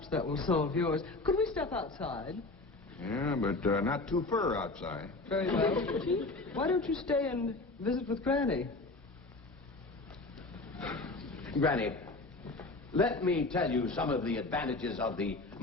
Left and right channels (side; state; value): right; quieter; 3.2 dB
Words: that will solve yours. Could we step outside? Yeah, but not too far outside. Very well. Chief, why don't you stay and visit with Granny? Granny, let me tell you some of the advantages of the